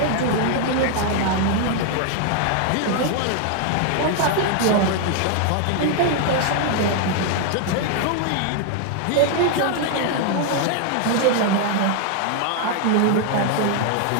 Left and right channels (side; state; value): both; different; correlation 0.00